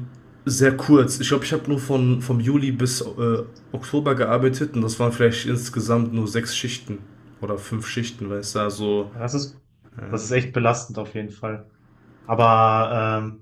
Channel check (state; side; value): identical; both; correlation 1.00